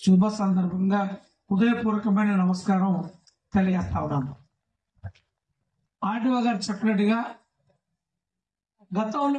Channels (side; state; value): both; identical; correlation 1.00